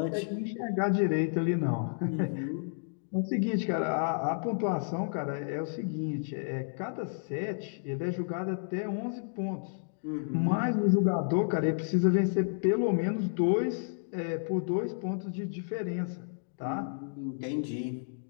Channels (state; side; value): silent; right; digital silence